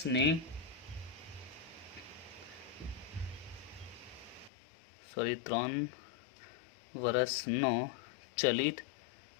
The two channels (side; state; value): right; drops out; at 4.5 s